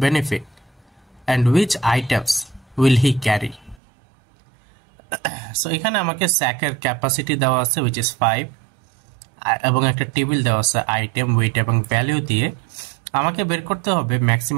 benefit and which items will he carry. So এখানে আমাকে স্যাকের ক্যাপাসিটি দেওয়া আছে which is 5, এবং একটা টেবিল দেওয়া আছে আইটেম, ওয়েট এবং ভ্যালু দিয়ে। আমাকে বের করতে হবে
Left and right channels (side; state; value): left; drops out; at 3.8 s